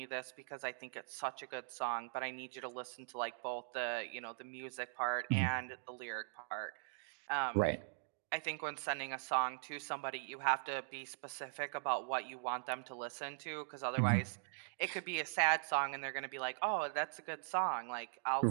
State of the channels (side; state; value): left; silent; digital silence